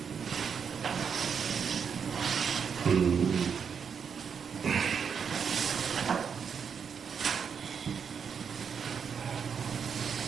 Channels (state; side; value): quieter; left; 6.7 dB